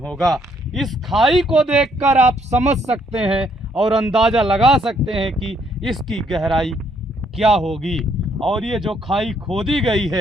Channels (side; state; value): both; normal; correlation 0.69